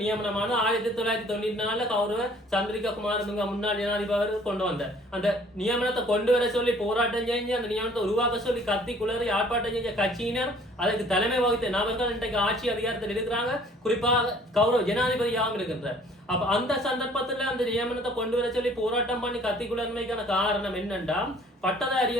நியமனமான 1994 கௌரவ சந்திரிகா குமாரதுங்க முன்னாள் ஜனாதிபதி கொண்டு வந்த அந்த நியமனத்தை கொண்டு வர சொல்லி போராட்டம் செஞ்சு அந்த நியமனத்தை உருவாக்க சொல்லி கத்தி குளறி ஆர்ப்பாட்டம் செஞ்ச கட்சியினர் அதற்கு தலைமை வகித்த நபர்கள் இன்றைக்கு ஆட்சி அதிகாரத்தில் இருக்கிறாங்க. குறிப்பாக கௌரவ ஜனாதிபதியாகவும் இருக்கின்றார். அப்ப அந்த சந்தர்ப்பத்துல அந்த நியமனத்தை கொண்டு வர சொல்லி போராட்டம் பண்ணி கத்தி குளர்மைக்கான காரணம் என்னன்னா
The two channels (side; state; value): both; normal; correlation 0.55